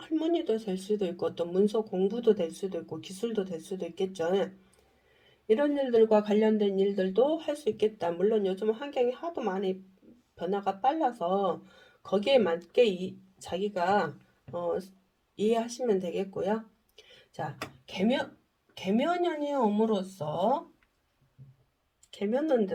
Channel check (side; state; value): both; identical; correlation 1.00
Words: 될 수도 있고 또 문서 공부도 될 수도 있고 기술도 될 수도 있겠죠. 이런 일들과 관련된 일들도 할 수 있겠다. 물론 요즘 환경이 하도 많이 변화가 빨라서 거기에 맞게 자기가 이해하시면 되겠고요. 자, 개묘년이 옴으로써